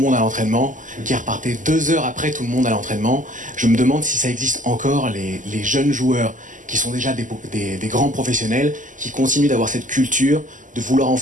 à l'entraînement, qui repartaient 2 heures après tout le monde à l'entraînement. Je me demande si ça existe encore, les jeunes joueurs qui sont déjà des grands professionnels, qui continuent d'avoir cette culture de vouloir en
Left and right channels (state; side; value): late; left; 0.37 ms